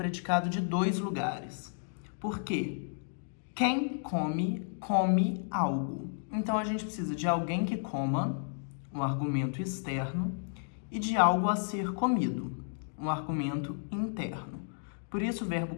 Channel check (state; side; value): silent; right; digital silence